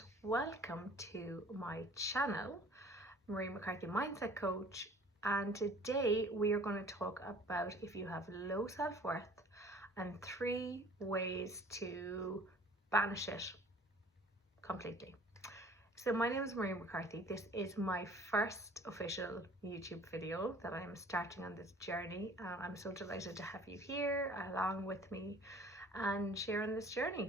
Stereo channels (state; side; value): normal; both; correlation 0.50